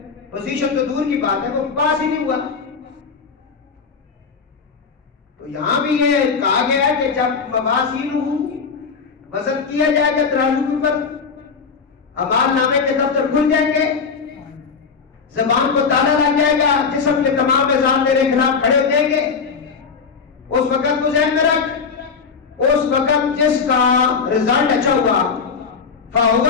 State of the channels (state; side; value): quieter; right; 5.5 dB